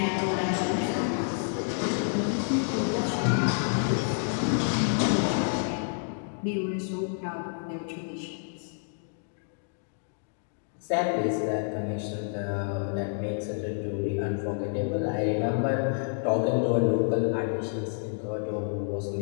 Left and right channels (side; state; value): right; silent; digital silence